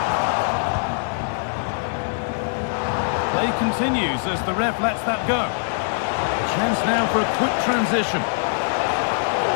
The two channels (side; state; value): right; silent; digital silence